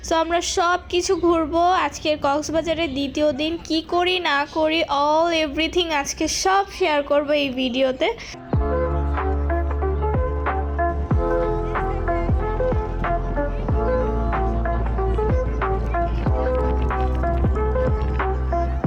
সো আমরা সব কিছু ঘুরবো। আজকের কক্সবাজারের দ্বিতীয় দিন কি করি না করি অল এভরিথিং আজকে সব শেয়ার করব এই ভিডিওতে।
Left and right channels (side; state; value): both; identical; correlation 1.00